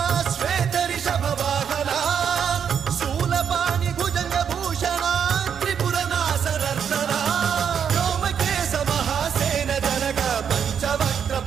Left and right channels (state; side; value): quieter; left; 7.7 dB